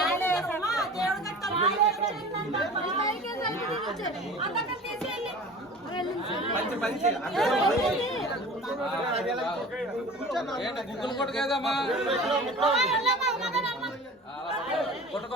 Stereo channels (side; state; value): both; normal; correlation 0.39